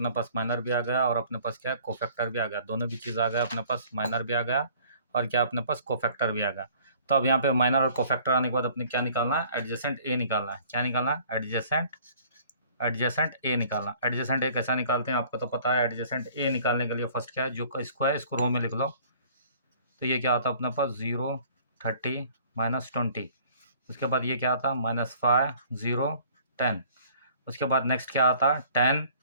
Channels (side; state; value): both; inverted; correlation -0.54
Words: पास माइनर भी आ गया और अपने पास क्या है, कोफैक्टर भी आ गया। दोनों भी चीज़ आ गया अपने पास, माइनर भी आ गया और क्या अपने पास कोफैक्टर भी आ गया। तो अब यहाँ पे माइनर और कोफैक्टर आने के बाद अपने क्या निकालना है, एडजेसेंट ए निकालना है। क्या निकालना है, एडजेसेंट ए निकालना। एडजेसेंट ए कैसा निकालते हैं आपको तो पता है। एडजेसेंट ए निकालने के लिए फर्स्ट क्या है, जो इसको है इसको रो में लिख लो। तो ये क्या आता है अपने पास, 0 30 -20। उसके बाद ये क्या आता, -5 0 10। उसके बाद नेक्स्ट क्या आता, 10